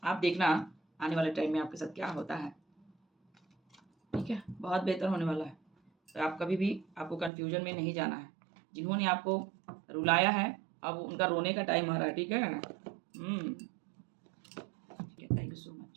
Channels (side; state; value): left; drops out; at 7.3 s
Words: आप देखना आने वाले टाइम में आपके साथ क्या होता है, ठीक है? बहुत बेहतर होने वाला है। तो आप कभी भी आपको कन्फ्यूज़न में नहीं जाना है। जिन्होंने आपको रुलाया है, अब उनका रोने का टाइम आ रहा है, ठीक है? ठीक है, thank you so